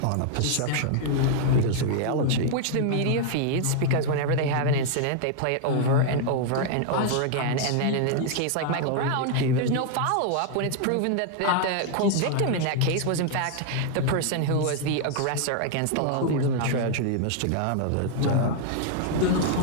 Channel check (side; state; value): both; different; correlation 0.00